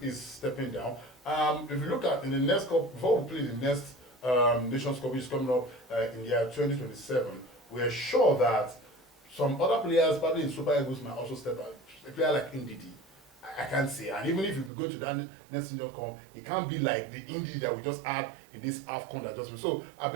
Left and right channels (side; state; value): left; drops out; at 14.7 s